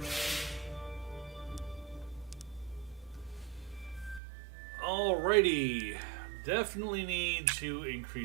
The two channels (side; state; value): left; drops out; at 4.2 s